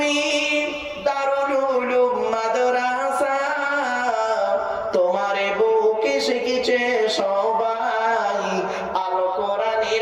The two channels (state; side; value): identical; both; correlation 1.00